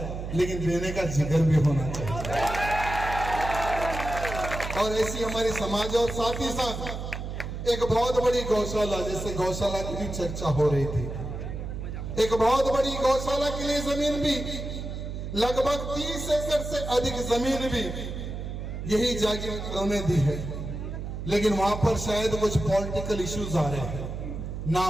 लेकिन देने का जिगर भी होना चाहिए। और ऐसी हमारी समाज। और साथ ही साथ एक बहुत बड़ी गौशाला, जैसे गौशाला की भी चर्चा हो रही थी, एक बहुत बड़ी गौशाला के लिए जमीन भी लगभग 30 एकड़ से अधिक जमीन भी यही जागीर ने दी है। लेकिन वहां पर शायद कुछ पॉलिटिकल इश्यूज आ रहे हैं,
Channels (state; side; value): noise; right; hum, 6 dB below the sound